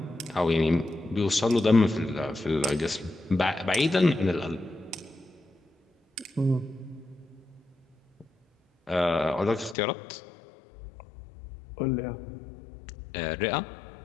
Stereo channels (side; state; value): right; drops out; at 9.8 s